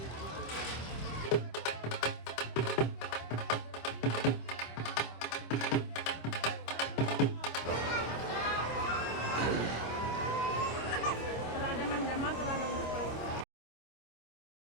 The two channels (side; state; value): right; late; 25 ms